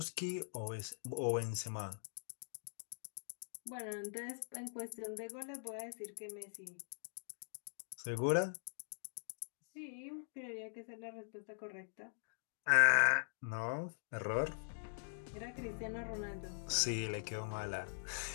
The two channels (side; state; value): right; silent; digital silence